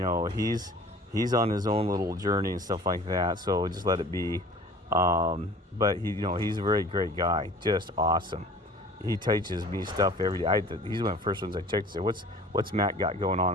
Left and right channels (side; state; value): both; normal; correlation 0.46